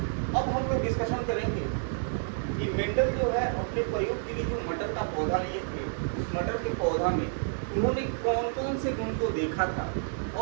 अब हम लोग डिस्कशन करेंगे कि मेंडल जो है अपने प्रयोग के लिए जो मटर का पौधा लिए थे, उस मटर के पौधा में उन्होंने कौन कौन से गुण को देखा था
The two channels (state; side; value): silent; left; digital silence